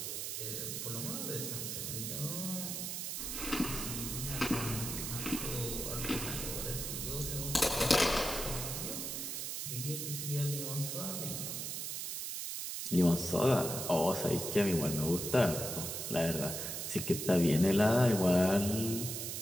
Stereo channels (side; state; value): right; noise; hiss, 4 dB below the sound